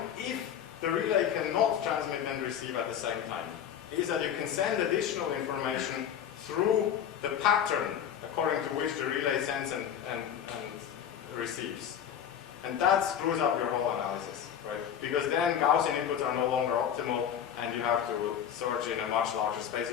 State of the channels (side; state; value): right; quieter; 9.1 dB